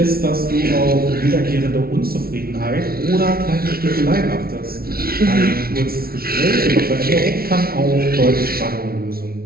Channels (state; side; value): late; left; 0.44 ms